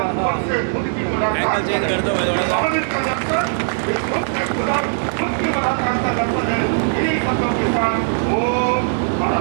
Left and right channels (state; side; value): silent; left; digital silence